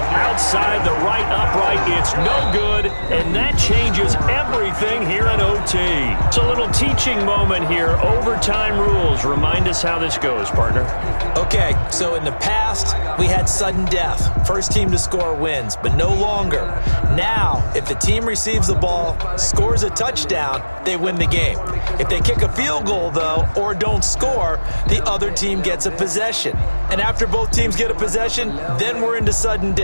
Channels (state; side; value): inverted; both; correlation -1.00